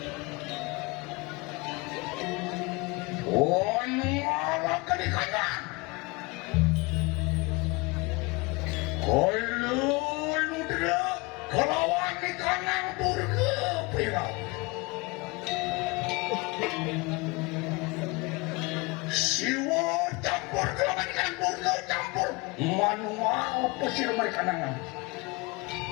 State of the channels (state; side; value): quieter; right; 25.9 dB